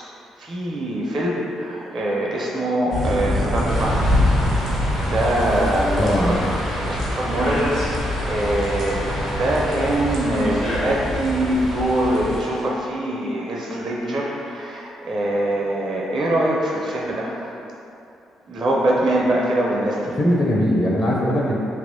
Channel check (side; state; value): both; normal; correlation 0.79